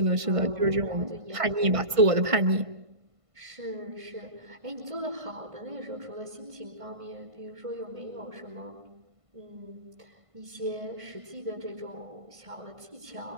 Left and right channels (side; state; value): left; late; 1.5 ms